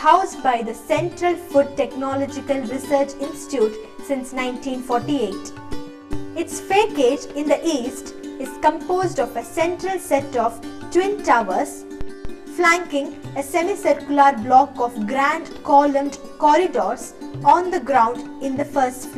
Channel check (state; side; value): identical; both; correlation 1.00